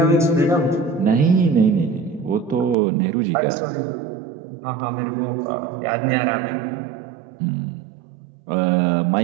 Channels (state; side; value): drops out; left; at 2.8 s